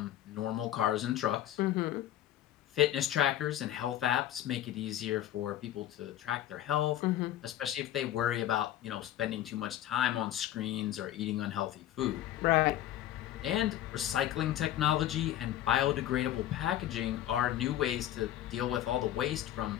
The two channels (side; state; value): right; quieter; 12.5 dB